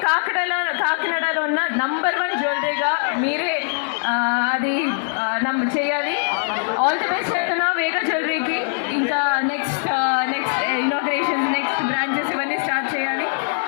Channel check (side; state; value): right; silent; digital silence